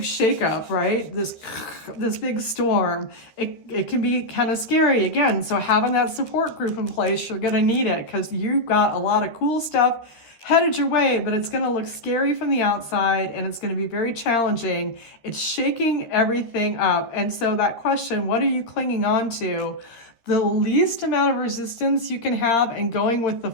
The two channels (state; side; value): late; right; 13 ms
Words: shakeup, right, this big storm, it can be kind of scary again. So having that support group in place, you're going to need it because you've got a lot of cool stuff headed your way, but it's going to look scary from the outside and it's going to be very challenging. It's shaking everything up. And so that question, what are you clinging on to? The least amount of resistance you can have and going with the